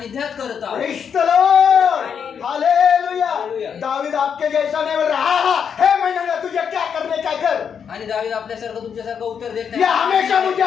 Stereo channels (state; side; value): quieter; right; 7.3 dB